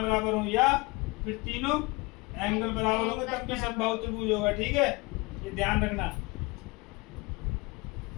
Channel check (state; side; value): quieter; right; 25.3 dB